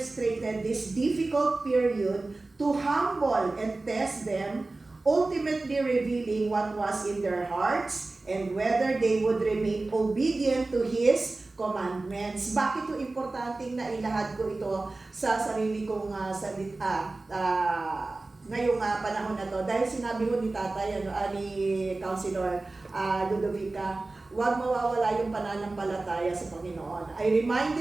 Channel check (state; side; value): quieter; left; 3.2 dB